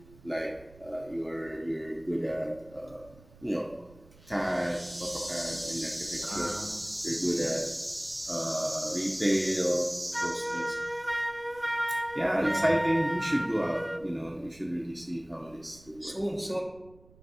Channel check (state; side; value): noise; right; rumble, 24 dB below the sound